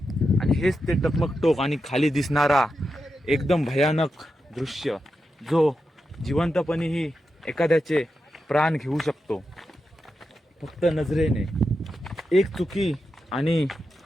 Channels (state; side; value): normal; both; correlation 0.88